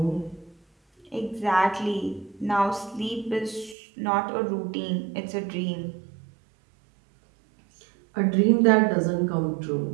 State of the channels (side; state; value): left; drops out; at 3.8 s